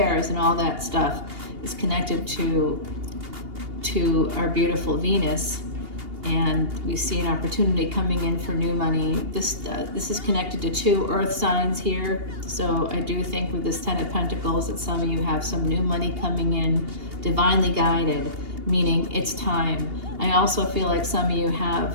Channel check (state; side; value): late; left; 2.8 ms